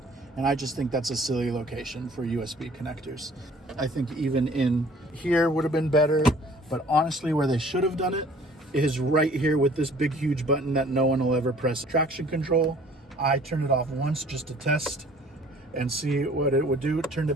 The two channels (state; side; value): normal; both; correlation 0.53